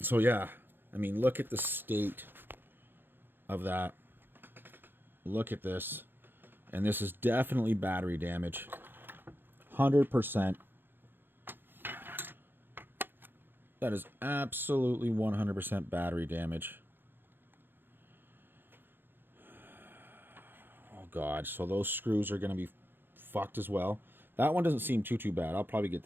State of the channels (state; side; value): late; left; 0.099 ms